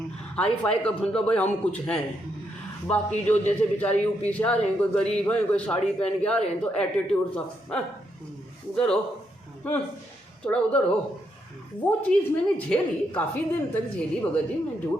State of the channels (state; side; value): normal; both; correlation 0.78